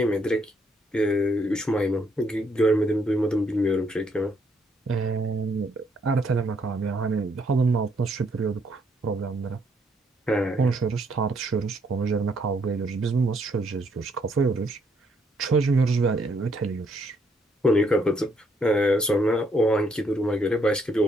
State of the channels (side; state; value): both; normal; correlation 0.71